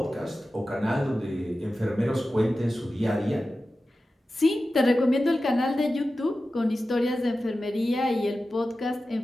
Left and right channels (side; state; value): both; normal; correlation 0.94